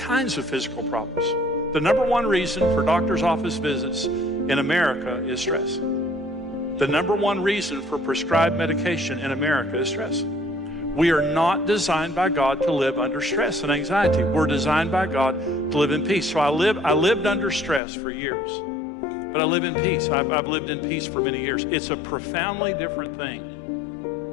of physical problems. The number one reason for doctor's office visits in America is stress. The number one reason for prescribed medication in America is stress. We are not designed by God to live under stress and anxiety. We're designed by God to live in peace. So I lived under stress for years, but I live in peace. I've lived in peace for many years. It's a profoundly different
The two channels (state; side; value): drops out; right; at 17.8 s